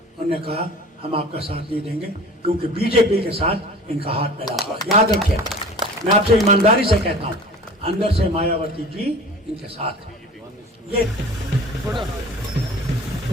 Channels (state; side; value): normal; both; correlation 0.41